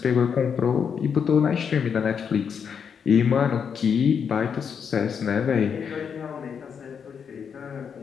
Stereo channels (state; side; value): quieter; right; 7.0 dB